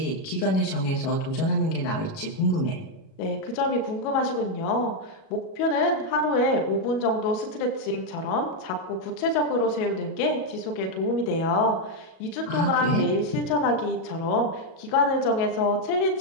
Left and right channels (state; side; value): late; right; 37 ms